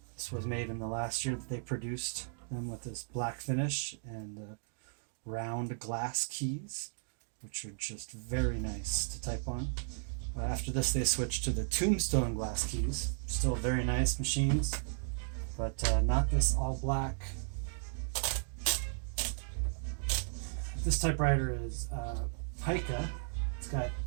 This was made in the last year that they produced them with this black finish and round glass keys, which are just very nice to type on. After this they switched to the tombstone glass keys, still very nice machines, but not this all black. This typewriter is Pica. It's got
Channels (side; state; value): left; silent; digital silence